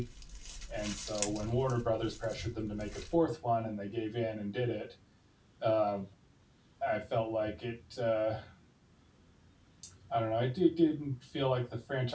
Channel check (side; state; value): both; identical; correlation 1.00